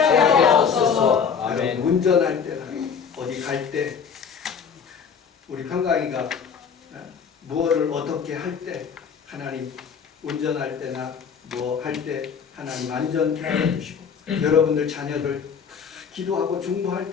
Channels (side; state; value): right; quieter; 6.6 dB